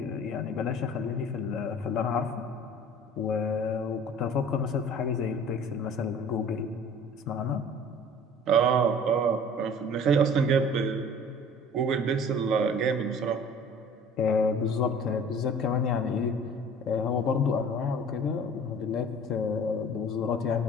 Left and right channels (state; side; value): normal; both; correlation 0.46